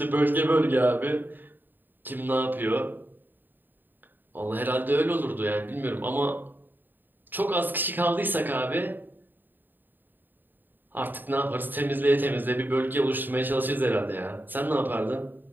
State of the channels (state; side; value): late; left; 0.091 ms